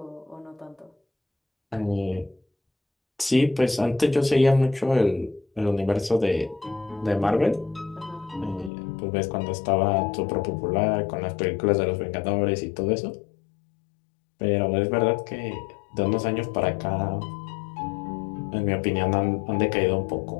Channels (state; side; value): drops out; right; at 8.7 s